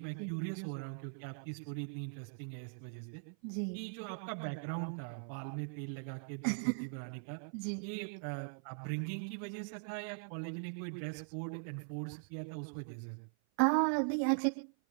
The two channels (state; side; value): silent; left; 51 dB below the other